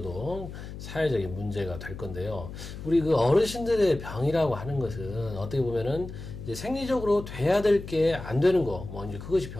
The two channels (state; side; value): noise; left; hum, 11 dB below the sound